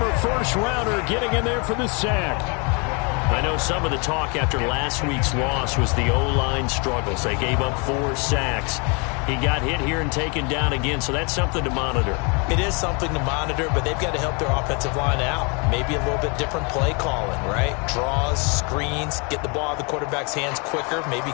first-rounder, getting in there for the sack. I know some of the talk after last week's loss was the O-line struggles. They gave up 4 sacks. He got hit here and taken down again, so that's something to monitor. It is something to monitor, but they've got to help their offensive line out. Maybe a little bit different play calling, right? Draws, screens, get the ball out of the quarterback's hands quicker, maybe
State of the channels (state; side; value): quieter; right; 32.8 dB